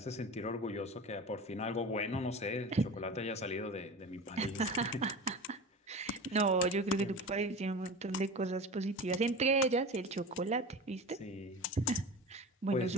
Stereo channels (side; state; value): both; normal; correlation 0.31